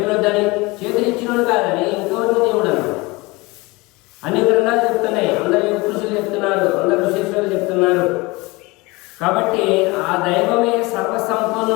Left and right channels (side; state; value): right; quieter; 23.7 dB